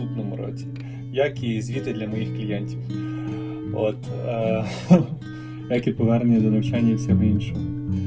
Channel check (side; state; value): both; identical; correlation 1.00